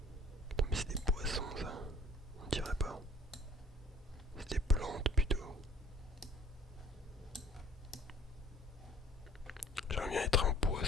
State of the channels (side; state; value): both; normal; correlation 0.54